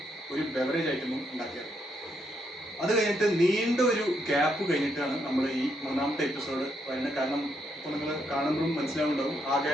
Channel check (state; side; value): normal; both; correlation 0.77